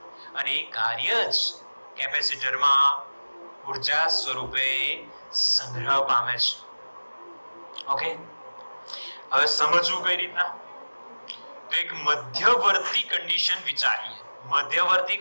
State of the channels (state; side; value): inverted; both; correlation -1.00